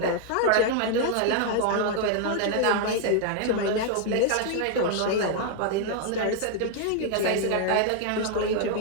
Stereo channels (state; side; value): different; both; correlation 0.00